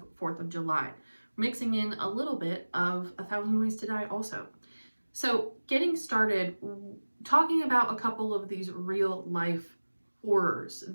4th of July, mixing in a little bit of A Thousand Ways to Die also. So getting started, talking about a couple of these real life horrors,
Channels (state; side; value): inverted; both; correlation -1.00